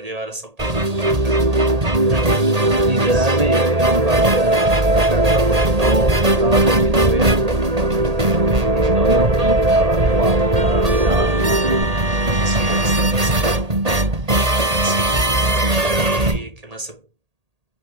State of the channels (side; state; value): left; late; 1.8 ms